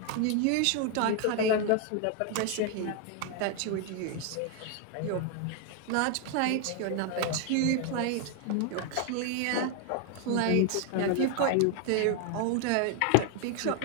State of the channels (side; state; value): both; different; correlation 0.00